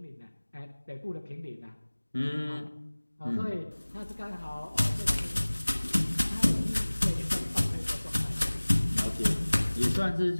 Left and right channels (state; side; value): inverted; both; correlation -1.00